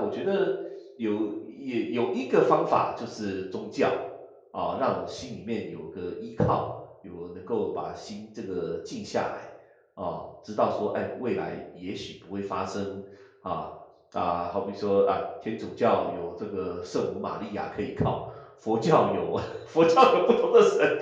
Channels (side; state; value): both; identical; correlation 1.00